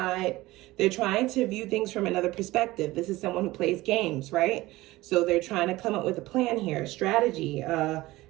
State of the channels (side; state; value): left; quieter; 18.7 dB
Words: They're trying to view things from another perspective. This is someone who plays games, right? So they're trying to come up with a plan here, strategy,